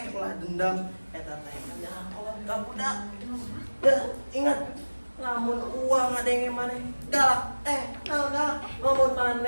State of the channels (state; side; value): inverted; both; correlation -1.00